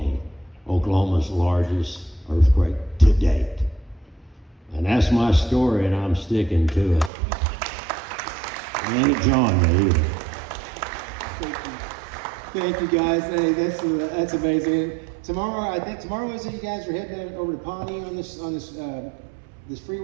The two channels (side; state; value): left; drops out; at 7.1 s